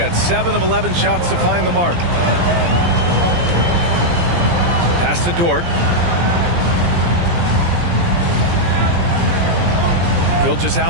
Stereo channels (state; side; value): late; left; 17 ms